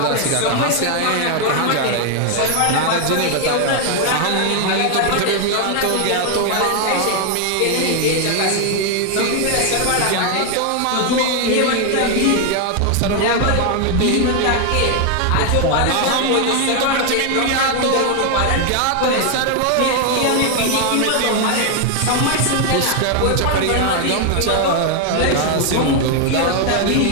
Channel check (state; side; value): different; both; correlation 0.00